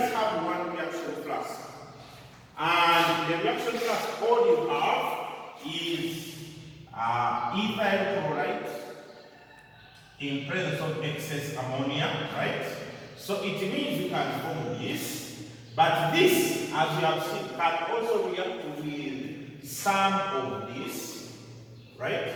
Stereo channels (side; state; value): both; identical; correlation 1.00